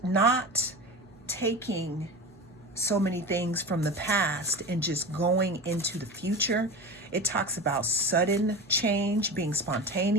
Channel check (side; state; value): right; noise; hum, 28 dB below the sound